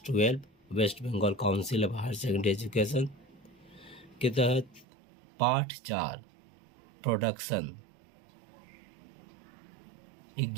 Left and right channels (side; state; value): left; drops out; at 4.9 s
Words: 12 West Bengal council of higher secondary education के तहत पाठ 4 प्रोडक्शन